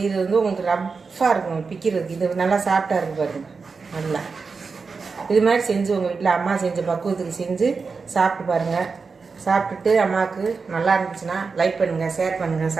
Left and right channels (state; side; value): quieter; left; 4.8 dB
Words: வந்து உங்களுக்கு ரஃப்பாக இருக்கும் பிக்கிறதுக்கு. இது நல்லா சாஃப்டாக இருக்குது பாருங்கள். நல்லா இது மாதிரி செஞ்சு உங்கள் வீட்டில் அம்மா செஞ்ச பக்குவத்துக்கு செஞ்சு சாப்பிட்டு பாருங்கள். சாப்பிட்டுட்டு அம்மாவுக்கு நல்லா இருந்துச்சுன்னா லைக் பண்ணுங்கள், ஷேர் பண்ணுங்கள்,